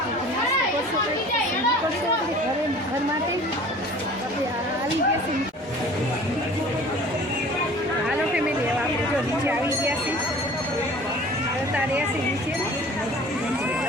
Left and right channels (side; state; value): both; normal; correlation 0.46